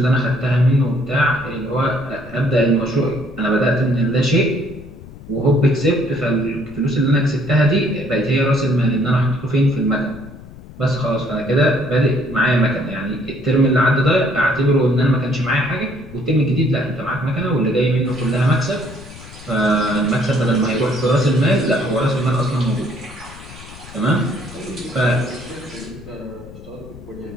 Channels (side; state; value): left; noise; rumble, 17 dB below the sound